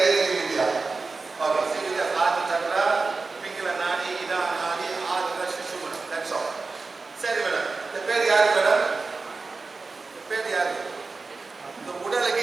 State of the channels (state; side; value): quieter; left; 4.0 dB